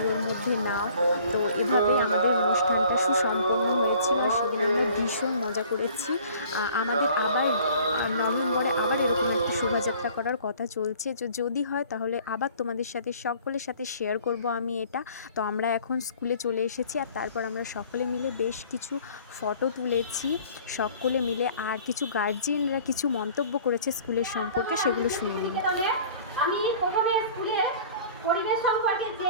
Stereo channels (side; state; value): both; inverted; correlation -0.51